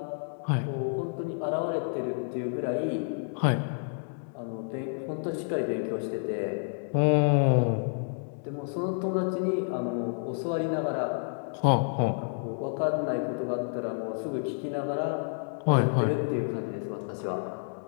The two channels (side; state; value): right; silent; digital silence